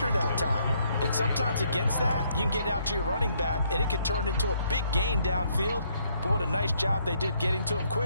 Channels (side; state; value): both; inverted; correlation -0.70